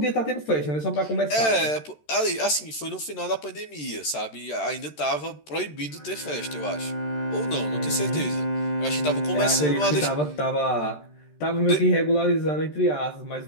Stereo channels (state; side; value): late; right; 13 ms